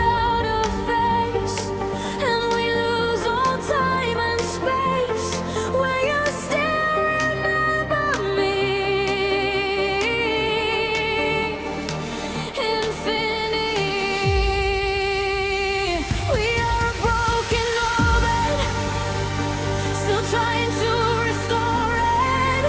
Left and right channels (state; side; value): identical; both; correlation 1.00